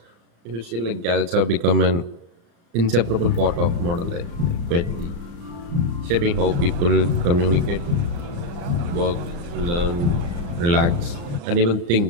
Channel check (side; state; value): left; late; 35 ms